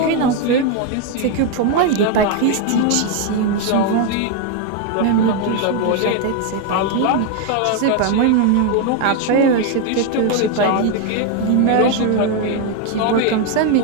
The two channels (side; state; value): both; different; correlation 0.01